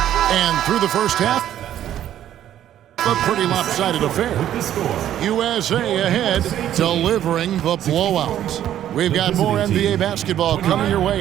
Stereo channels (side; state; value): left; quieter; 11.4 dB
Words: And through the first half, a pretty lopsided affair. USA ahead, delivering the blowout. We've got more NBA basketball coming your